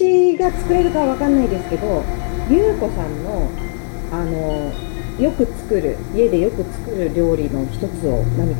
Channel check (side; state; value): right; silent; 58 dB below the other